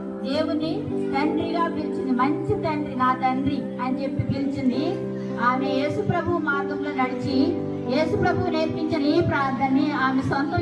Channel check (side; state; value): both; identical; correlation 1.00